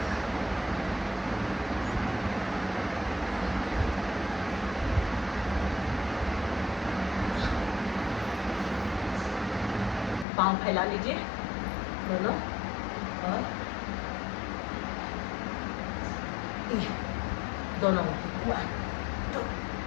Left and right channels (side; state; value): right; drops out; at 10.2 s